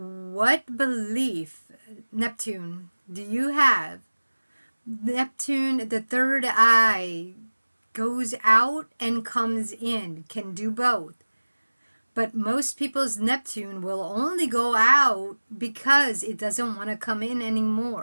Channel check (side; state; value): both; inverted; correlation -1.00